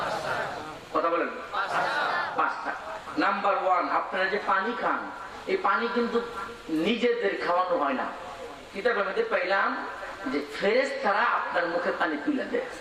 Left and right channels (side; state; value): both; identical; correlation 1.00